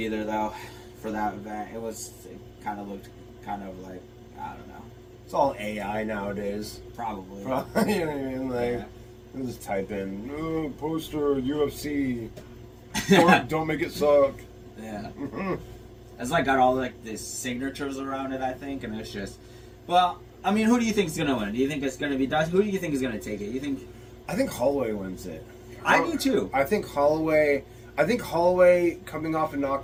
though, for that event. It kind of looked kind of like, I don't know. It's all AI nowadays. Probably. You know what I mean? Like, just type in poster UFC. Don't make it suck. Yeah. It's like got all like these signatures around it, I think, and it's just. Well, I mean, who do you think is gonna win? Do you think it's gonna be Dustin? Who do you think is gonna take it? You think? I think Holloway wins it. I do too. I think Holloway coming off a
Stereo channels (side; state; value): both; identical; correlation 1.00